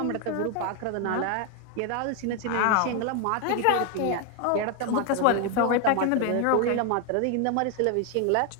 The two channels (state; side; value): different; both; correlation 0.01